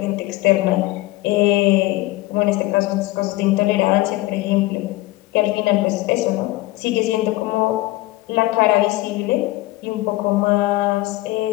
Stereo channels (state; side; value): quieter; right; 18.8 dB